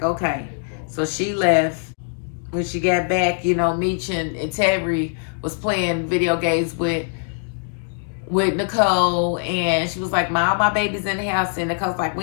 okay. So she left. When she got back, you know, Meech and Terry was playing video games with Nicole, and she was like, my baby's in the house, and Nicole's like,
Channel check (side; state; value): right; silent; 61 dB below the other